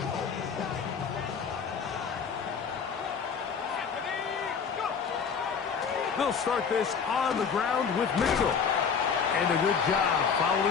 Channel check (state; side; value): quieter; right; 6.3 dB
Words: They'll start this on the ground with Mitchell. And a good job